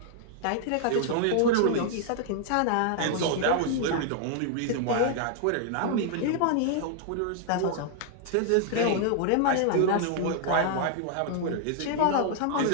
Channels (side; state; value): both; different; correlation 0.00